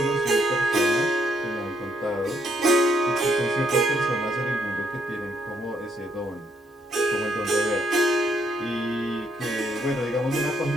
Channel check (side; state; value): both; normal; correlation 0.73